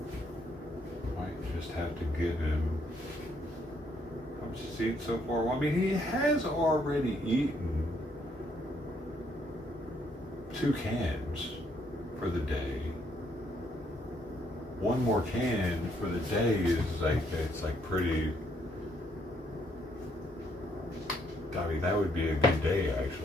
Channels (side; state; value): both; normal; correlation 0.71